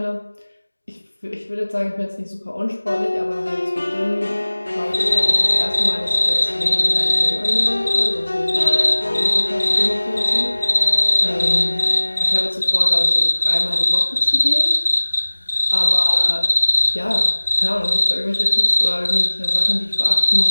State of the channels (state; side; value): inverted; both; correlation -1.00